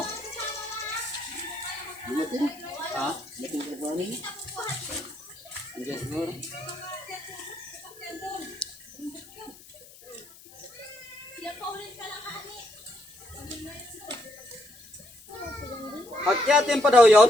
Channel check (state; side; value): noise; left; hiss, 21 dB below the sound